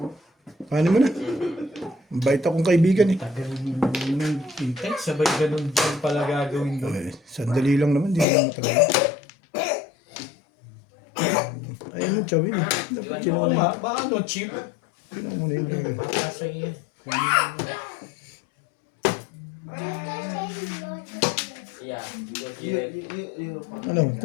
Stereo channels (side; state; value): right; drops out; at 8.2 s